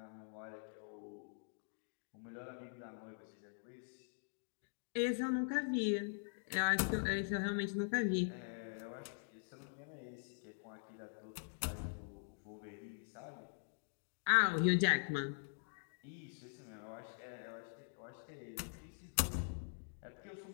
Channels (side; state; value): right; silent; digital silence